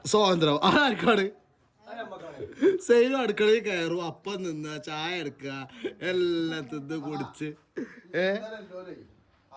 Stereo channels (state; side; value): identical; both; correlation 1.00